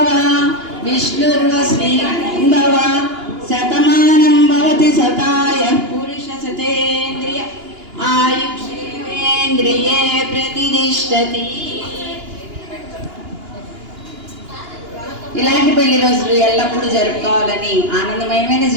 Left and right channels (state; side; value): late; left; 2.9 ms